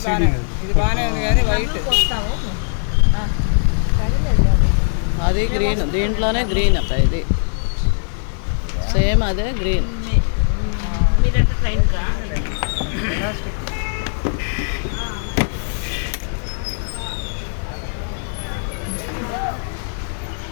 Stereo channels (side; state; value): right; silent; digital silence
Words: ఇది బాగానే ఉంది కానీ వైట్ వస్తాము. అది గ్రీన్, దీంట్లోనే గ్రీన్ అక్క. ఇది సేమ్ అదే గ్రీన్. మీరంటే ట్రైన్కా?